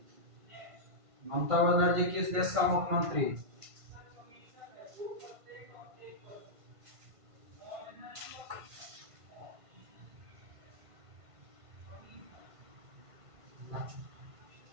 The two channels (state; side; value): late; left; 1.5 ms